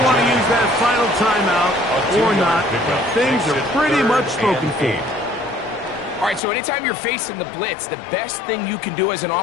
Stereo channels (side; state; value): right; drops out; at 6.4 s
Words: want to use that final timeout or not. Things are pretty much spoken for. All right, so anytime you're facing the blitz, the best thing you can do as an